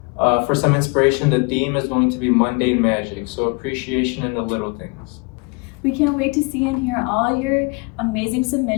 for some inspiration, the theme is going to be mundane magic, so appreciation in the little things. We can't wait to see and hear all your amazing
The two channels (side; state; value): right; quieter; 30.8 dB